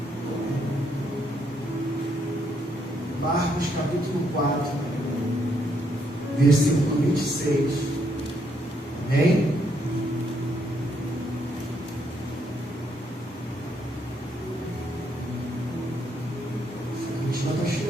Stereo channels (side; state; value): both; normal; correlation 0.74